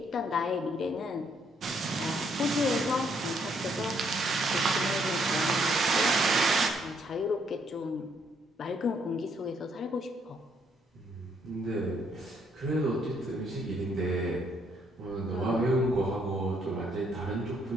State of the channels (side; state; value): both; normal; correlation 0.71